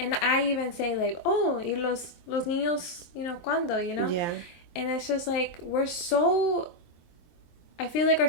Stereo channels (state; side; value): late; right; 23 ms